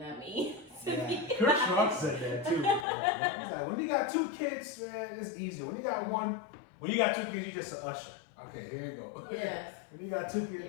me. Yeah. Kurt Schrock said that too. He's like, when you got 2 kids, man, it's easier. When you got 2 kids, you just an usher. Okay, here you go. Yes. When you got 2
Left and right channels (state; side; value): drops out; right; at 2.9 s